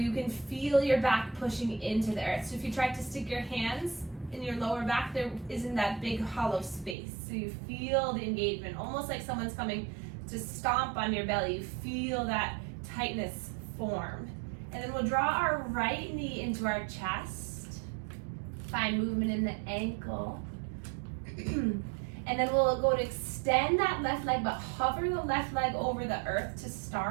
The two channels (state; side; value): drops out; left; at 7.0 s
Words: can feel your back pushing into the earth. So if you try to stick your hands in your lower back, there isn't that big hollow space. So you feel the engagement, almost like someone's coming to stomp on your belly. You feel that tightness form. And then we'll draw our right knee into our chest. Find movement in the ankle. And then we'll go to extend that left leg, but hover the left leg over the earth to